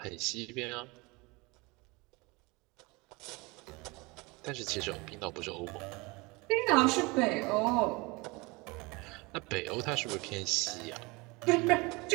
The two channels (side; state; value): left; quieter; 25.4 dB